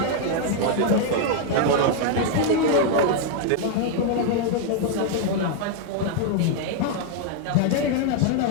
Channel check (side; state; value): both; different; correlation 0.00